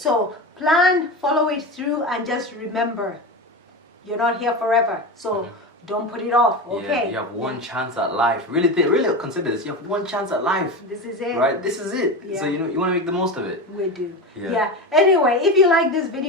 plan, follow it through, and just remember, you're not here forever. So don't put it off, okay? You have one chance at life. Really consider this. You have one chance at life. This is it. Right? This is it. So you want to make the most of it. We do. Yeah. Anyway, if you like this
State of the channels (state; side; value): normal; both; correlation 0.22